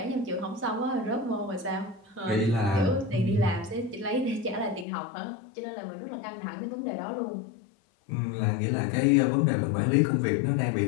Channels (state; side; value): drops out; right; at 4.9 s